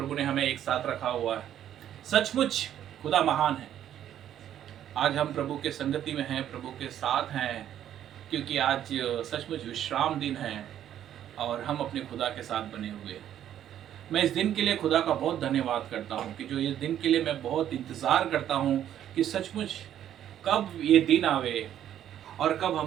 ने हमें एक साथ रखा हुआ है। सचमुच खुदा महान है। आज हम प्रभु के संगति में हैं, प्रभु के साथ हैं, क्योंकि आज सचमुच विश्राम दिन है और हम अपने खुदा के साथ बने हुए हैं। मैं इस दिन के लिए खुदा का बहुत धन्यवाद करता हूं कि जो इस दिन के लिए मैं बहुत इंतज़ार करता हूं कि सचमुच कब ये दिन आवे और कब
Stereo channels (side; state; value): left; quieter; 10.8 dB